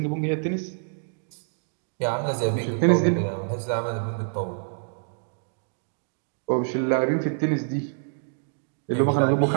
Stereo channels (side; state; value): left; silent; digital silence